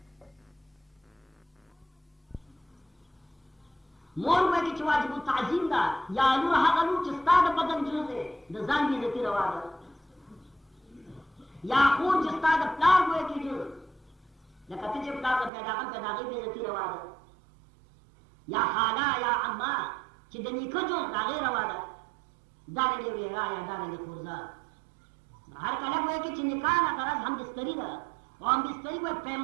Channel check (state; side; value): drops out; left; at 15.5 s